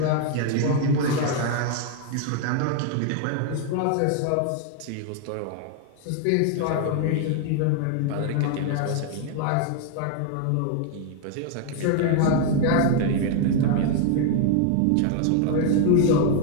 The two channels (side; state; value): both; different; correlation 0.00